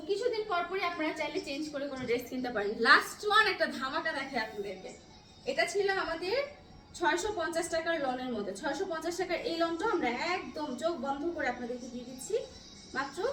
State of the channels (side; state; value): both; identical; correlation 1.00